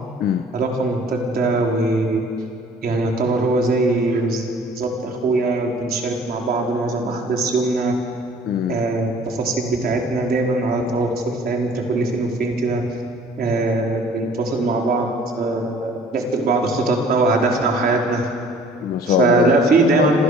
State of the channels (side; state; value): both; normal; correlation 0.52